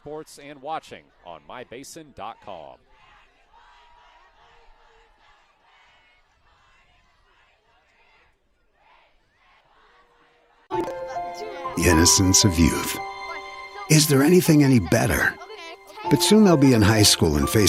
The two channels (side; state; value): both; identical; correlation 1.00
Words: and watching on mybasin.com. The innocence of youth. Is there anything any better? But soon they'll be in high school and